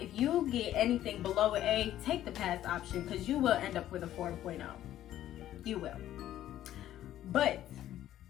you get anything below an A, take the pass option because you will end up with a 4.0. You will. But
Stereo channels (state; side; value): quieter; right; 12.6 dB